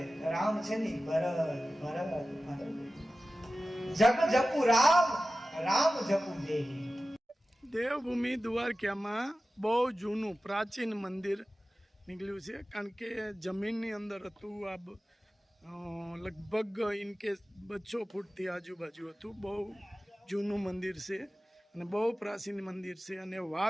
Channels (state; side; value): normal; both; correlation 0.95